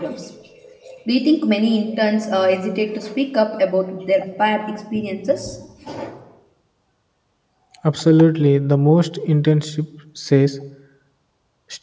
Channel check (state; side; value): identical; both; correlation 1.00